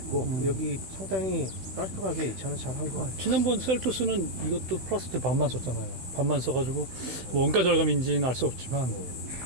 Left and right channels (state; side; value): late; left; 16 ms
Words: 여기 상당히 깔끔하게 이 차는 잘 한 것 같아요. 지난번 셀토스는 이것도 플라스틱 반만 썼잖아요. 반만 써가지고 뭐 원가 절감인지는 알 수 없지만.